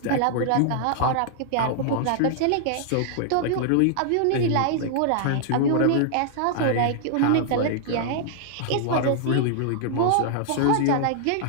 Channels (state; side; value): different; both; correlation -0.01